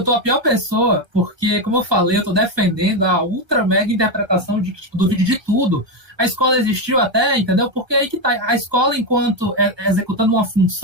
tô a pior pessoa, porque, como eu falei, eu tô defendendo a ultra mega interpretação de que, tipo, do vídeo de tudo. A escola existiu até, entendeu? Porque aí que tá. A escola, enquanto executando uma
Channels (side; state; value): left; late; 1.3 ms